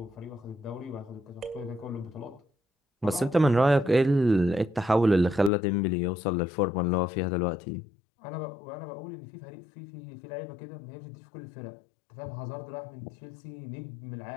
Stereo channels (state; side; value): drops out; right; at 5.5 s